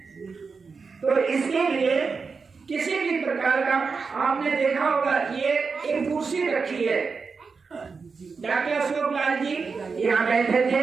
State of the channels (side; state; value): left; quieter; 5.0 dB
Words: तो इसके लिए किसी भी प्रकार का, आपने देखा होगा ये एक कुर्सी रखी है, डॉक्टर अशोक लाल जी यहाँ बैठे